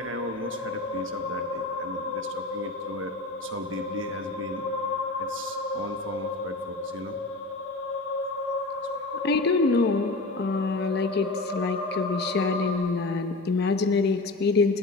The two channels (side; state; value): right; quieter; 3.2 dB